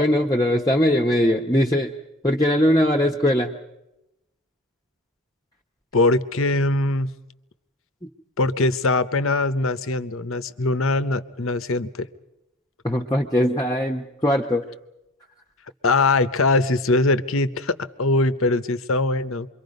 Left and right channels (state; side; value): normal; both; correlation 0.40